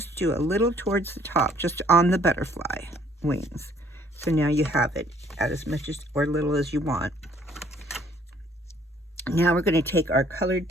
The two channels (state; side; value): normal; both; correlation 0.61